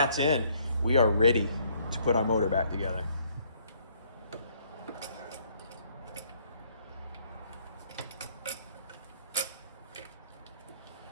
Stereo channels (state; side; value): inverted; both; correlation -0.65